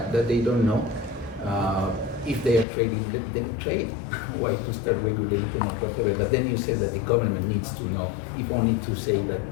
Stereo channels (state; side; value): drops out; right; at 2.7 s